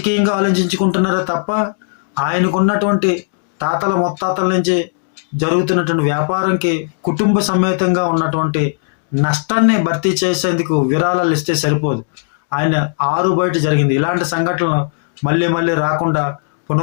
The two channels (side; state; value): right; silent; digital silence